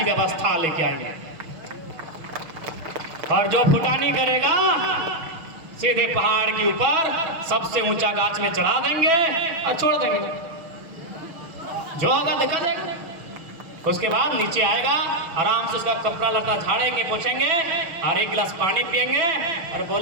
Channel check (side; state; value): left; late; 6.5 ms